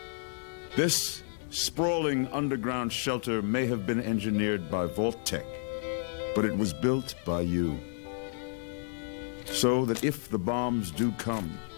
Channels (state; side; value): silent; right; 57 dB below the other